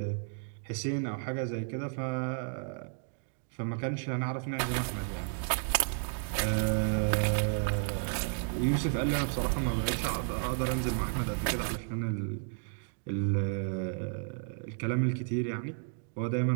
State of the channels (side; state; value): left; silent; 56 dB below the other